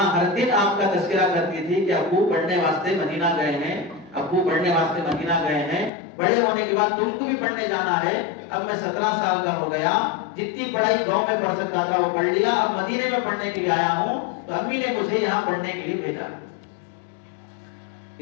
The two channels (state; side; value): drops out; right; at 5.9 s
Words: ہر دن آپ کا تذکرہ کرتی تھی کہ ابو پڑھنے واسطے مدینہ گئے ہیں، ابو پڑھنے واسطے مدینہ گئے ہیں، بڑے ہونے کے بعد تم کو بھی پڑھنے جانا ہے. اب میں 17 سال کا ہو گیا، جتنی پڑھائی گاؤں میں پڑھ سکتا تھا وہ پڑھ لیا، اب مدینے میں پڑھنے کے لیے آیا ہوں تو امی نے مجھے یہاں پڑھنے کے لیے بھیجا.